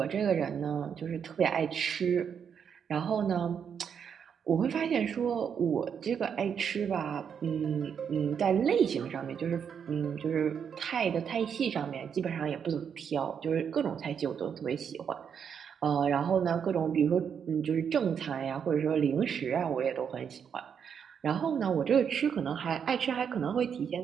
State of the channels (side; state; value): left; quieter; 7.4 dB